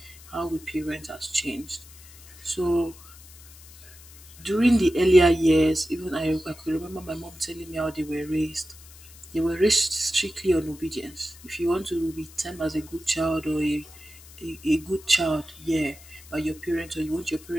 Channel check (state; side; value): noise; left; hiss, 20 dB below the sound